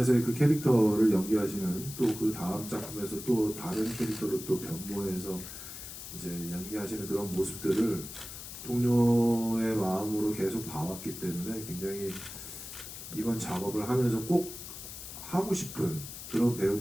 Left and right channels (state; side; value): noise; left; hiss, 11 dB below the sound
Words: 그 캐릭터를 연기하시는 또 그 다음 작품에서 또 다른 캐릭터로 또 변모해서 이제 연기하시는 그런 모습들을 동료의 마음으로 계속 봐왔기 때문에 굉장히 이번 작업을 하면서 꼭 하고 싶은 그런